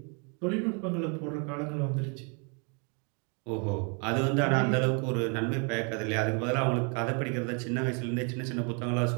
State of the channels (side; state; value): left; quieter; 36.3 dB